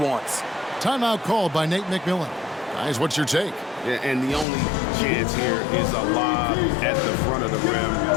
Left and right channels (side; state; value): right; drops out; at 4.5 s